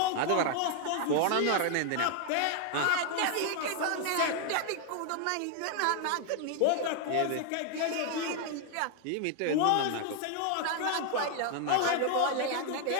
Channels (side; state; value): both; different; correlation 0.00